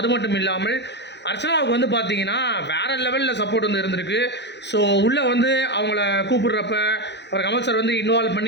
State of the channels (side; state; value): right; late; 0.50 ms